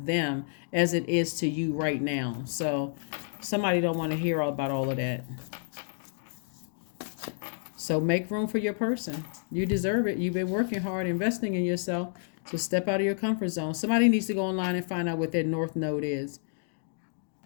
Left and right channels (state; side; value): silent; right; digital silence